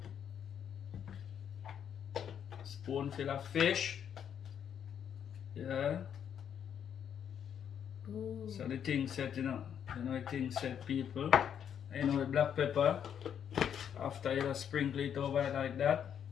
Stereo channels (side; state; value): right; quieter; 8.6 dB